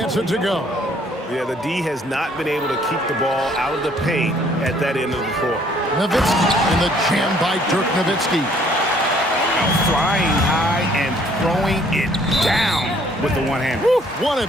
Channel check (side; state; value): both; normal; correlation 0.62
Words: it to go. Yeah, the D has not been able to keep the ball out of the paint at that end of the court. Nowitzki in the jam by Dirk Nowitzki. Flying high and throwing it down with the one-hand. One